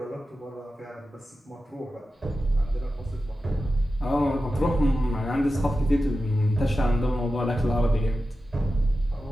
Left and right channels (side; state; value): both; normal; correlation 0.93